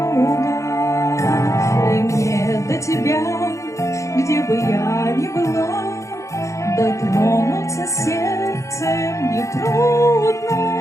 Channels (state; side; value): late; right; 0.15 ms